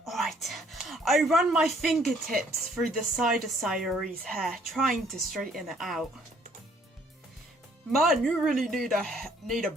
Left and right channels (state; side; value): normal; both; correlation 0.63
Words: Alright, I run my fingertips through the side of Sayori's hair, trying to straighten it out. Man, you really need a